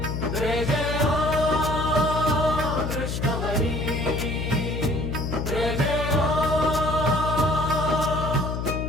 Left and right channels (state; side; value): noise; left; hum, 3 dB below the sound